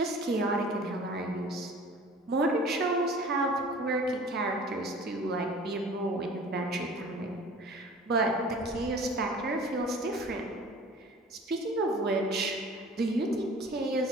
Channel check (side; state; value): both; normal; correlation 0.45